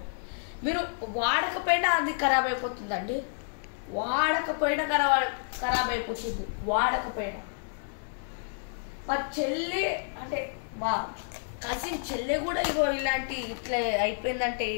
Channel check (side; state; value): right; silent; digital silence